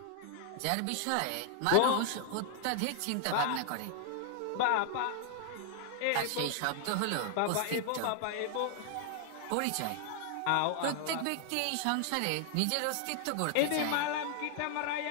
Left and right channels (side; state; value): both; different; correlation 0.00